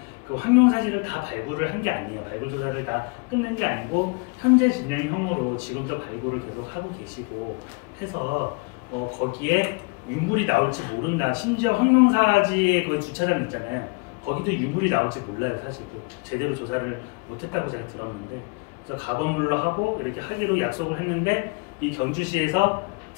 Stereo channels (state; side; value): quieter; right; 31.7 dB